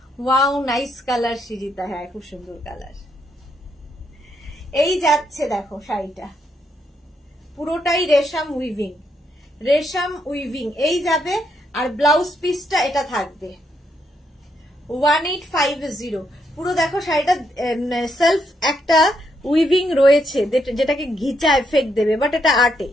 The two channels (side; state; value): both; normal; correlation 0.77